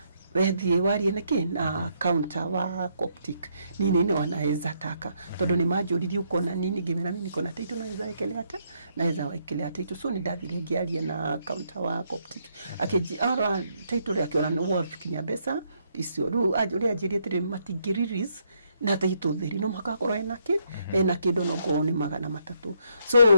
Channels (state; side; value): inverted; both; correlation -0.74